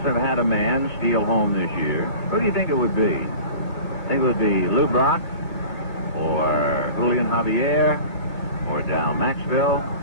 have had a man steal home this year. Who do you think it would be? Think it would be Lou Brock? Or Julian Javier? Or Dal Maxville?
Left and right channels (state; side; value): late; right; 2.2 ms